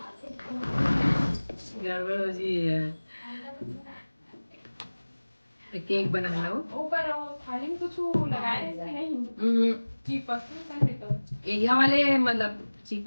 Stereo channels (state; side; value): inverted; both; correlation -1.00